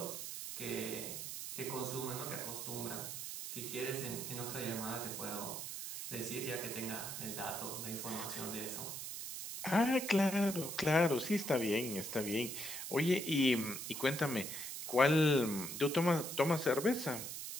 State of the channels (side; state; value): right; noise; hiss, 6 dB below the sound